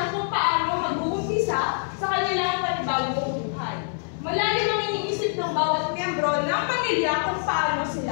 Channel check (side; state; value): right; silent; 62 dB below the other